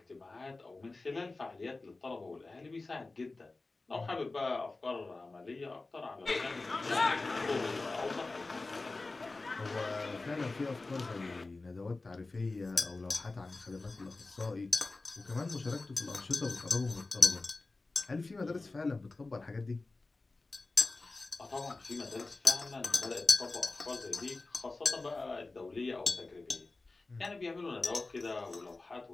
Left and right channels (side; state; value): right; quieter; 3.4 dB